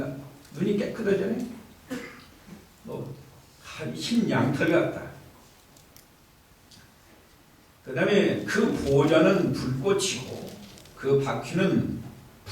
눈이 깨끗하잖아요. 흰 양털 같다. 그 다음에 그 보좌는 불꽃이고 그 바퀴는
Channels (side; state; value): both; identical; correlation 1.00